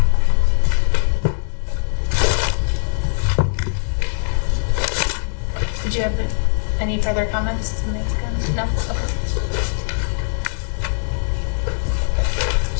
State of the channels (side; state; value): right; silent; 66 dB below the other